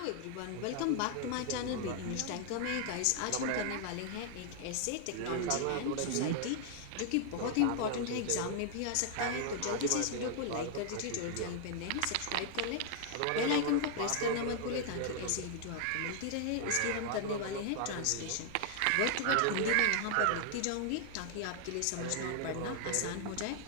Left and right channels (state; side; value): different; both; correlation 0.00